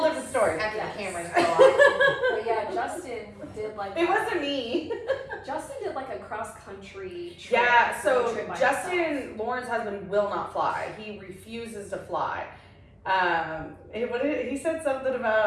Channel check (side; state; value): both; identical; correlation 1.00